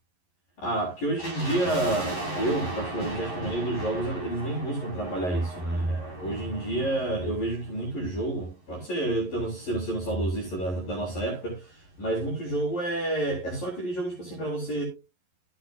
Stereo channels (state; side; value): late; right; 11 ms